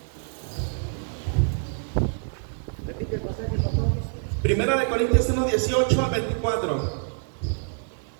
18 al 24.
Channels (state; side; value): silent; left; digital silence